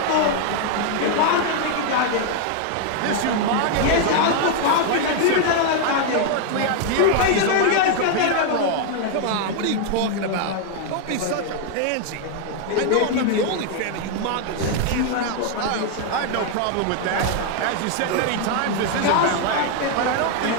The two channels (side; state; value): both; different; correlation 0.00